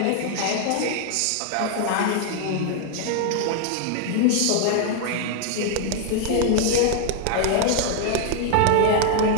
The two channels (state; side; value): different; both; correlation 0.00